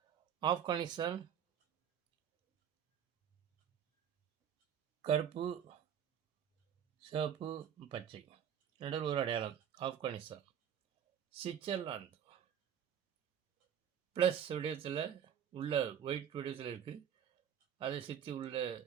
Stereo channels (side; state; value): left; quieter; 8.9 dB